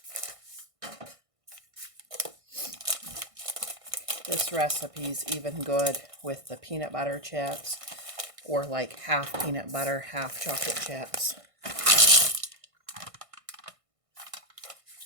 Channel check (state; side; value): late; left; 1.6 ms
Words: This recipe's even good with the peanut butter chips, or like half peanut butter, half chocolate chips.